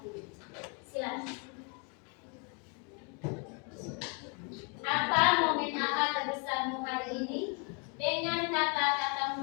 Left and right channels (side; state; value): right; quieter; 35.1 dB